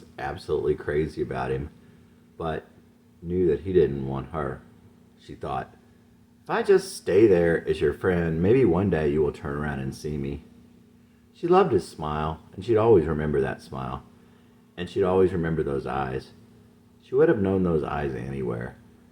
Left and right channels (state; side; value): identical; both; correlation 1.00